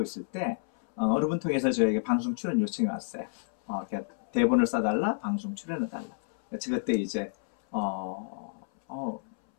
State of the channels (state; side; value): silent; right; 58 dB below the other